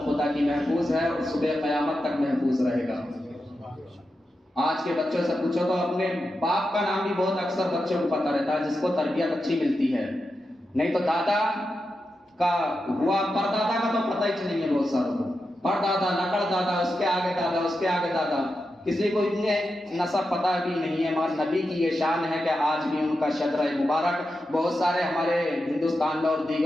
خدا کی محفوظ ہے اور صبح قیامت تک محفوظ رہے گا۔ آج کے بچوں سے پوچھو تو اپنے باپ کا نام بھی بہت اکثر بچوں کو پتہ رہتا ہے، جس کو تربیت اچھی ملتی ہے، نہیں تو دادا کا ہوا پردادا کا تو پتہ ہی نہیں ہے بہت ساروں کو۔ پردادا، نقل دادا، اس کے آگے دادا، اس کے آگے دادا، کسی کو اتنے نسب پتہ بھی نہیں ہے۔ مگر نبی کی یہ شان ہے کہ آج بھی ان کا شجرہ مبارک بہت سارے ہمارے ہندوستان میں اور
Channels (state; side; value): normal; both; correlation 0.89